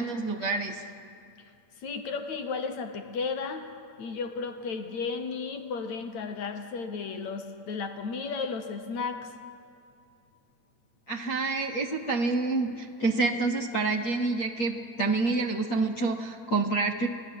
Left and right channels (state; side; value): late; right; 8.8 ms